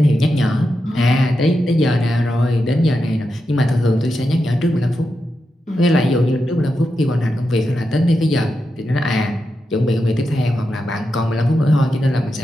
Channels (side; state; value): both; normal; correlation 0.88